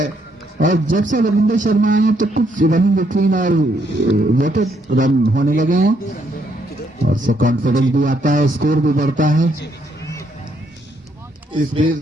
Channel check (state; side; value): normal; both; correlation 0.73